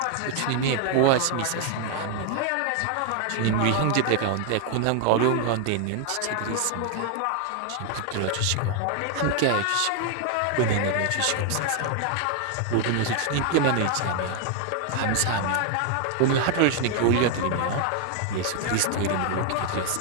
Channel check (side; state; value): both; different; correlation 0.00